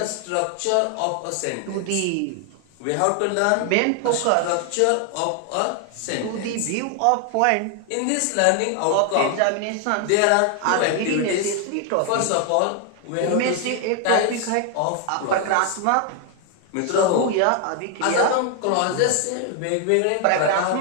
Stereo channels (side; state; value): both; different; correlation 0.01